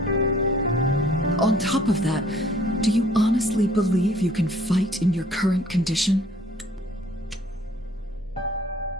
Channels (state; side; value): normal; both; correlation 0.57